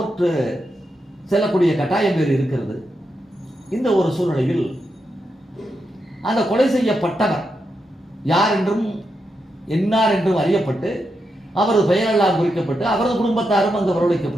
செல்லக்கூடிய கட்டாயம் வேறு இருக்கிறது. இந்த ஒரு சூழ்நிலையில் அந்த கொலை செய்யப்பட்டவர் யார் என்றும் என்னார் என்றும் அறியப்பட்டு அவரது பெயரெல்லாம் குறிக்கப்பட்டு அவரது குடும்பத்தாரும் அங்கு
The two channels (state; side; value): normal; both; correlation 0.85